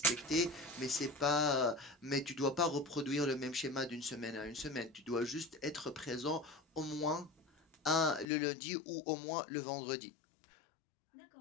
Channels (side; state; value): right; drops out; at 8.2 s